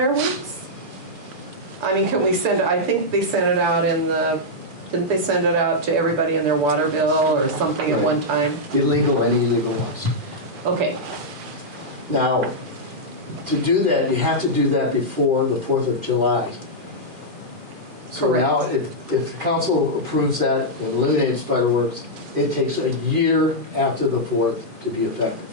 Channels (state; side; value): late; left; 2.4 ms